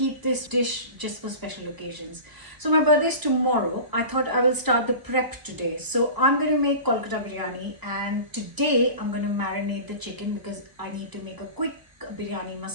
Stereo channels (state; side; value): late; left; 1.0 ms